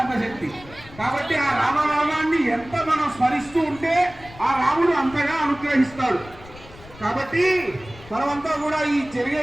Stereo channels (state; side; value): noise; left; rumble, 20 dB below the sound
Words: శక్తి. కాబట్టి ఆ రామనామాన్ని ఎంత మనం స్మరిస్తూ ఉంటే ఆ రాముడు అంతగా అనుగ్రహిస్తాడు. కాబట్టి మనమంతా కూడా ఈ